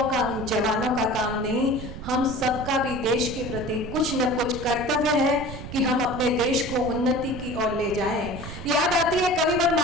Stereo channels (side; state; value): right; noise; rumble, 10 dB below the sound